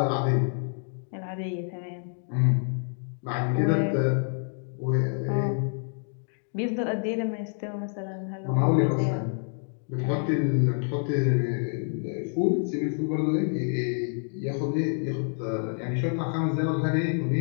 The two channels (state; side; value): silent; right; 60 dB below the other